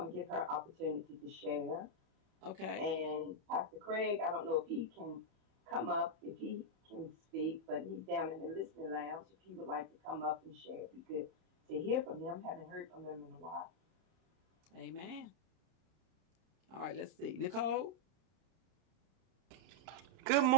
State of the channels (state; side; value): late; left; 31 ms